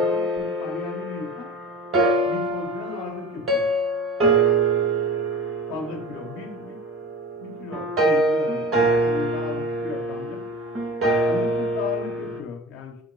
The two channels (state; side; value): normal; both; correlation 0.36